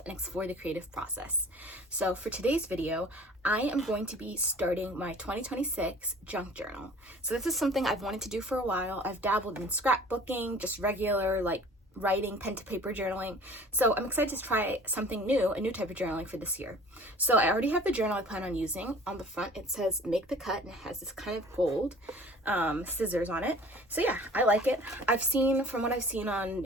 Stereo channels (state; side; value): normal; both; correlation 0.47